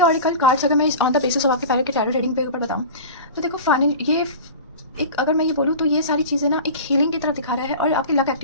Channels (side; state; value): both; inverted; correlation -0.33